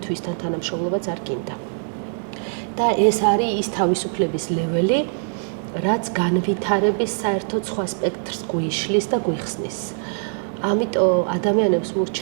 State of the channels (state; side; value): silent; left; digital silence